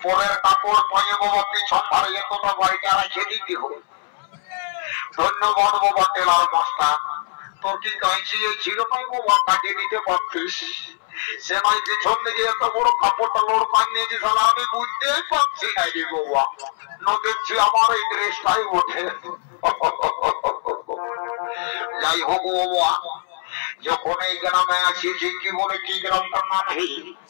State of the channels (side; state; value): right; silent; 64 dB below the other